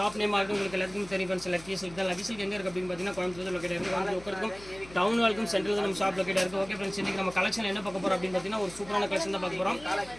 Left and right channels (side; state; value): left; noise; hum, 19 dB below the sound